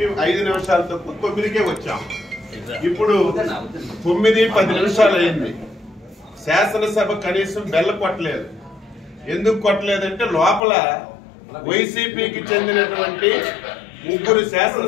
5 నిమిషాలు తక్కువ 9కే వచ్చాం. ఇప్పుడు 9:10 నిమిషాలు అయింది. శాసనసభ కనీసం బెల్ల కొట్టలేదు. ఎందుకు కొట్టలేదంటే లోపల వైసీపీకి చెందినటువంటి 3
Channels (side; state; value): right; drops out; at 10.6 s